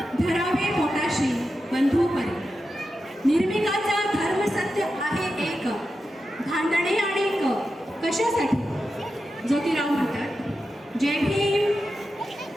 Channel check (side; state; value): both; normal; correlation 0.90